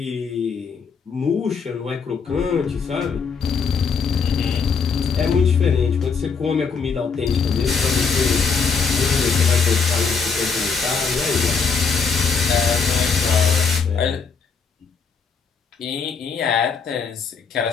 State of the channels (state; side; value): quieter; right; 5.5 dB